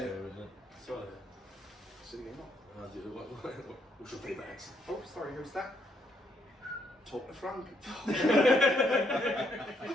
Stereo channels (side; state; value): both; normal; correlation 0.73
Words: isn't it? Sorry. What's your favourite accent? Oh, sorry, who's that? Talk to Frank. I